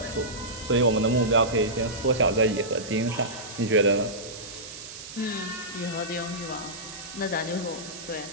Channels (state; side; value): noise; right; hiss, 13 dB below the sound